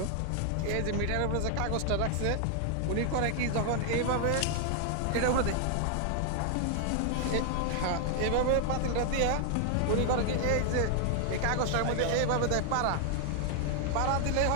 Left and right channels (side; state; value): both; different; correlation 0.00